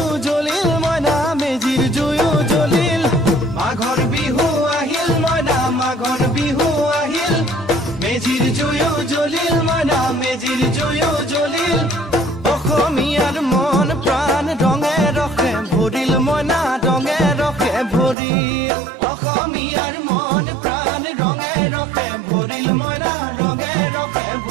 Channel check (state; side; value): drops out; left; at 18.2 s